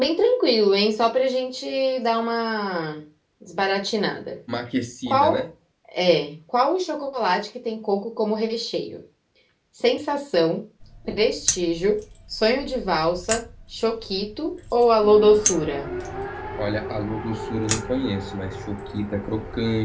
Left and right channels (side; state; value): both; identical; correlation 1.00